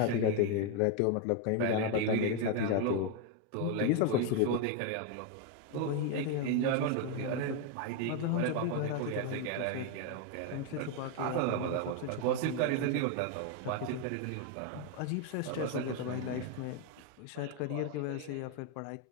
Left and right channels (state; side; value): different; both; correlation 0.01